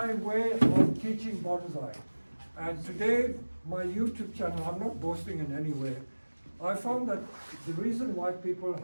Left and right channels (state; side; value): inverted; both; correlation -1.00